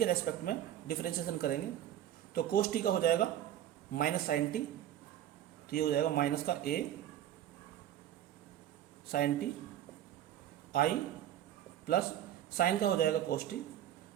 रेस्पेक्ट में डिफरेंशिएशन करेंगे तो cos t का हो जाएगा माइनस साइन टी। तो ये हो जाएगा माइनस का a sine t i plus sine का हो जाएगा cos t,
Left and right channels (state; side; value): quieter; left; 11.6 dB